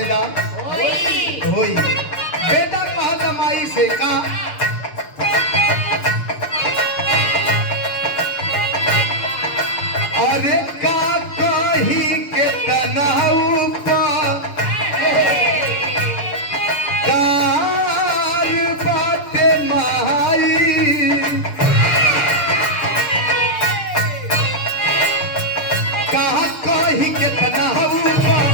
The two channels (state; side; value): late; right; 6.8 ms